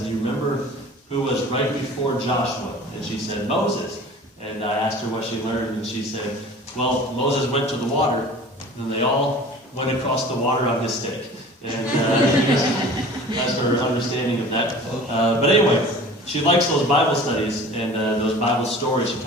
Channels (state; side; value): normal; both; correlation 0.43